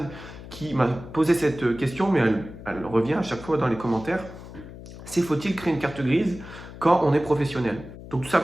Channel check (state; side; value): noise; left; hum, 14 dB below the sound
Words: qui m'a posé cette question, mais elle revient à chaque fois dans les commentaires. C'est faut-il créer une carte grise quand on est professionnel? Donc tout